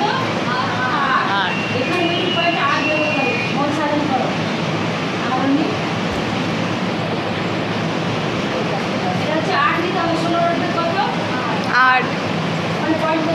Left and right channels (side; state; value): both; identical; correlation 1.00